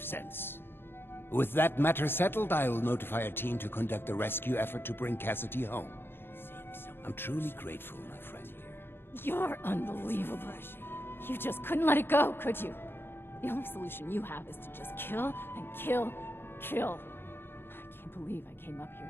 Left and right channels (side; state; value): right; late; 0.10 ms